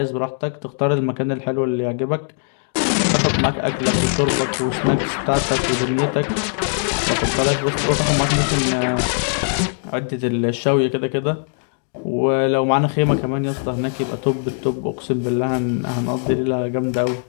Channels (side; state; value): right; silent; digital silence